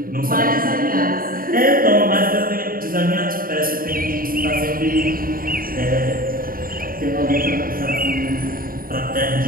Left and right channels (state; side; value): late; left; 0.42 ms